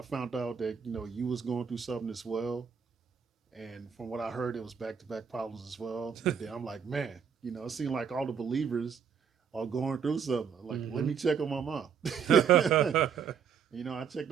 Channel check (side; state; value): left; quieter; 7.0 dB